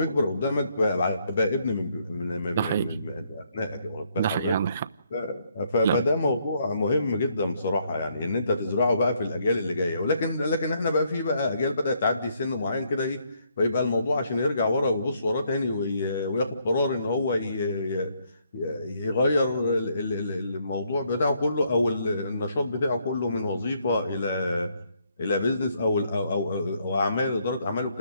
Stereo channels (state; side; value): inverted; both; correlation -0.72